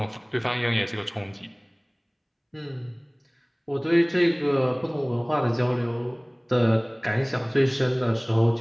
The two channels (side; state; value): both; identical; correlation 1.00